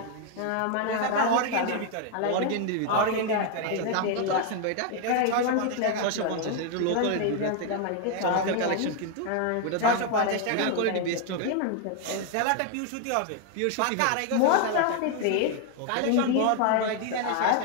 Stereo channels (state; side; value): different; both; correlation 0.00